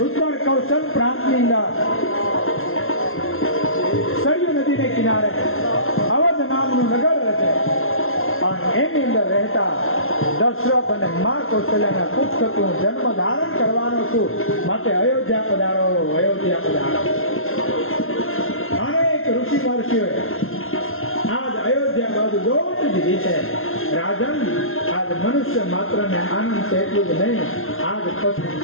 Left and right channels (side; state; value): right; late; 0.61 ms